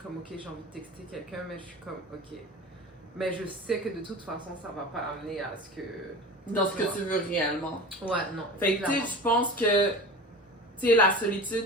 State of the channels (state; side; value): normal; both; correlation 0.34